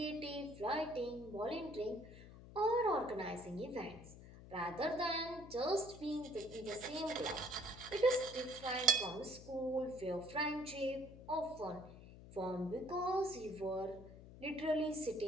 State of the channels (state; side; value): noise; left; hum, 16 dB below the sound